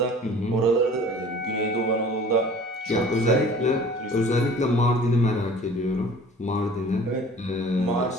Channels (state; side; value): normal; both; correlation 0.46